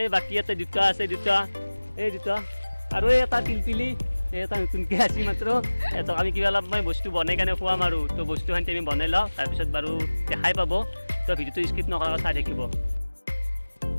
এই বাকী এটা দুটা আছে, এই দুটা আৰু এই এটা পিলপিলি, এই এটা নতুনকৈ আছে মাত্ৰ। সিহঁতক আমি কিবা অলপ মই বস্তু বনাই কাৰণে খুৱাম আৰু। তো বস্তুখিনি আমি বনাই লওঁ, তাৰপিছত বাৰু দেখাই পাব। তো ভিডিঅ'টো স্কিপ নকৰাকৈ চাই থাকিব।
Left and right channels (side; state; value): both; inverted; correlation -1.00